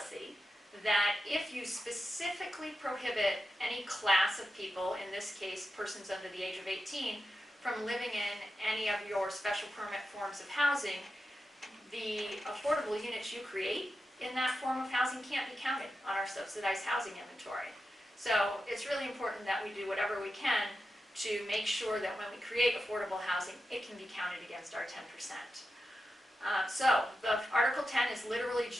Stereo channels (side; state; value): both; normal; correlation 0.90